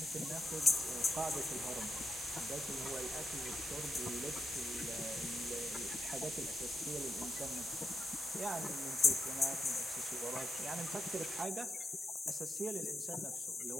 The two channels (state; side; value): normal; both; correlation 0.87